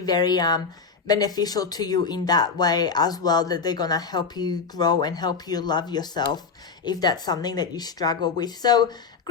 very beneficial to you in that way as well, that they're gonna help you grow and help you love yourself if that's something that you struggle with. So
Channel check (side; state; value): right; quieter; 5.2 dB